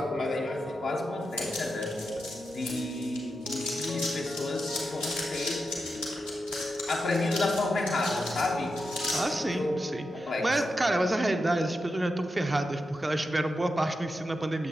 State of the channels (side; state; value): both; normal; correlation 0.88